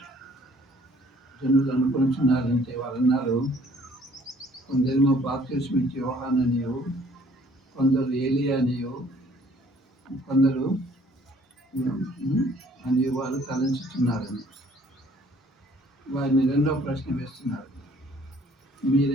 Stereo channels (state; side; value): normal; both; correlation 0.59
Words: జనులు అనుకుంటున్నారంటే వాళ్ళు అన్నారు, కొందరేమో బాప్తిస్మం ఇచ్చే యోహాననియు, కొందరు ఏలియా అనియు, కొందరు అని వాళ్ళు తలంచుతున్నారని. వారిని రెండవ ప్రశ్న వేస్తున్నారు,